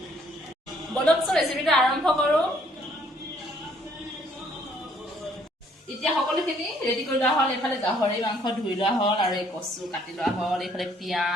বলকচোন ৰেচিপিটো আৰম্ভ কৰো এতিয়া সকলোখিনি ৰেডি কৰি লোৱা হ'ল এইফালে গাহৰি মাংস ধুই লোৱা হ'ল আৰু এই কচু কাটি লোৱা হ'ল এইফালে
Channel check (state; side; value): normal; both; correlation 0.64